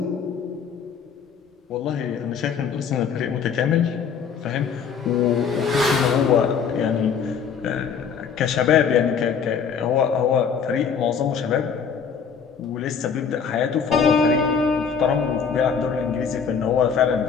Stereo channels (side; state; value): right; quieter; 6.6 dB